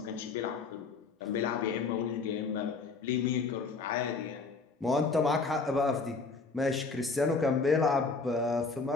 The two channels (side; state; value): right; quieter; 4.3 dB